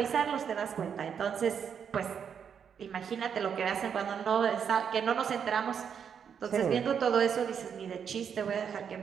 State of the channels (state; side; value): quieter; left; 7.4 dB